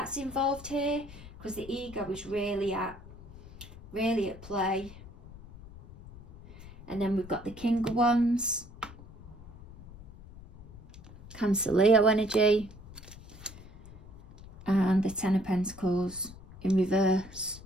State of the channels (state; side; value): noise; left; rumble, 18 dB below the sound